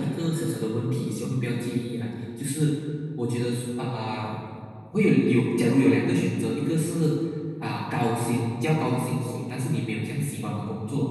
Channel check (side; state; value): both; identical; correlation 1.00